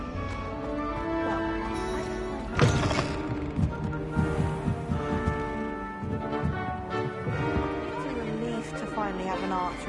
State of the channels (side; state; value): both; identical; correlation 1.00